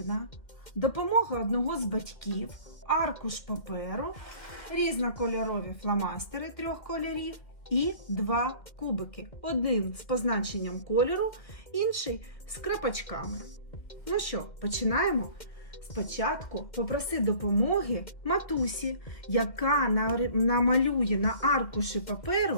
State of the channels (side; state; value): right; late; 2.1 ms